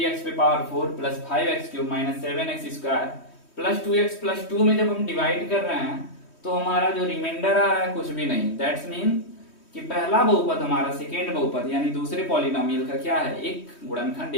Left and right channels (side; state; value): right; late; 3.1 ms